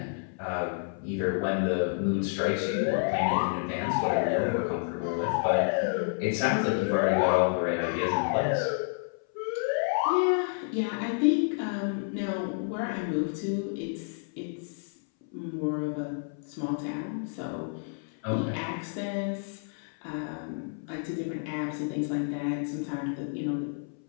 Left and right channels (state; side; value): silent; right; 58 dB below the other